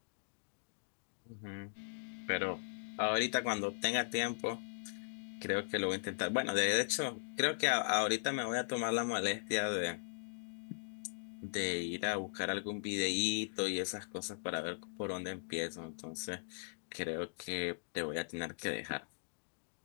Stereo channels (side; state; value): right; silent; digital silence